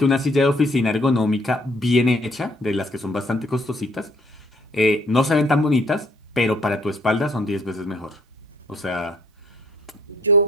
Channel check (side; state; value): both; normal; correlation 0.63